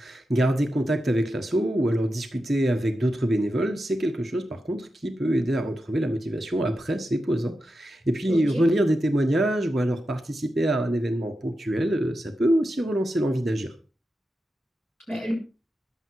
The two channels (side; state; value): both; normal; correlation 0.89